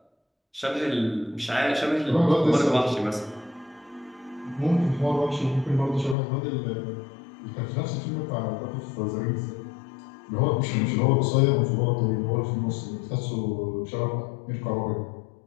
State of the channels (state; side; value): drops out; right; at 6.2 s